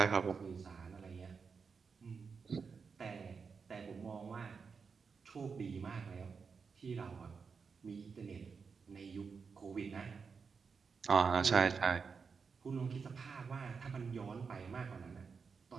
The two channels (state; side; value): quieter; left; 5.5 dB